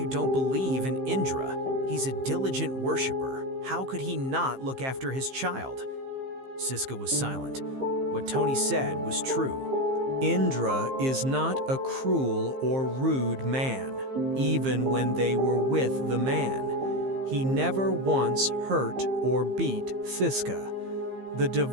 don't believe in Indra. He's a diligent worshiper. How could he not look after his child?" Siska was silent. What Tony said was true. Indra is not a cruel or rude man, even when they were with the man. He never once hurt or beat Siska. The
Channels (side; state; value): left; late; 15 ms